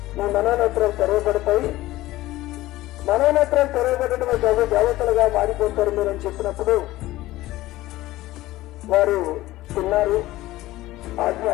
మీ మనోనేత్రాలు తెరవబడతాయి, మనోనేత్రాలు తెరవబడటమే కాదు దేవతలుగా మారిపోతారు మీరు అని చెప్పినప్పుడు వారు తిన్నారు. ఆజ్ఞ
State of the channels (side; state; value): right; quieter; 17.0 dB